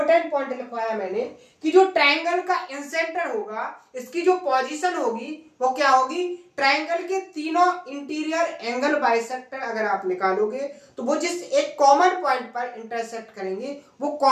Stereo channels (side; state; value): both; identical; correlation 1.00